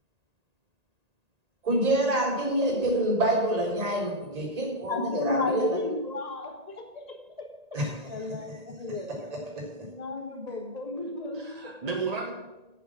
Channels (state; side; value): late; left; 1.8 ms